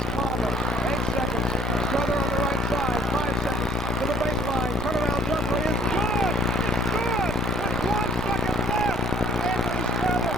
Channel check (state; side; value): normal; both; correlation 0.55